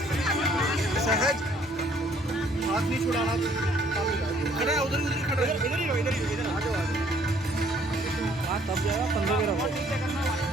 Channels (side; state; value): both; normal; correlation 0.61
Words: सहज हाथ नहीं छुड़ाना। खड़ा है, उधर ही खड़ा है, इधर ही हो, इधर आ जाओ, आ जाओ। हाँ तब जाएगा 15 में रहो।